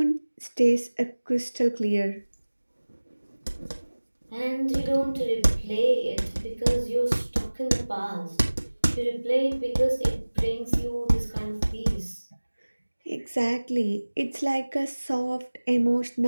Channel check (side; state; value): both; inverted; correlation -1.00